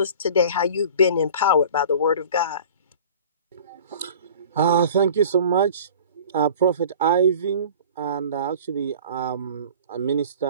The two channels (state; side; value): inverted; both; correlation -0.43